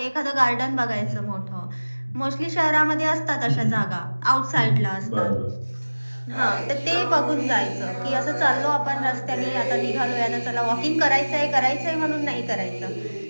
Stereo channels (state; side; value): inverted; both; correlation -1.00